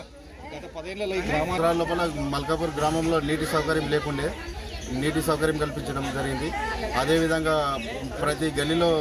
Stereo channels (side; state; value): both; identical; correlation 1.00